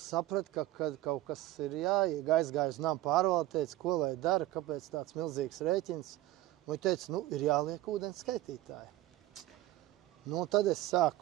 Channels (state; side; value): quieter; left; 15.8 dB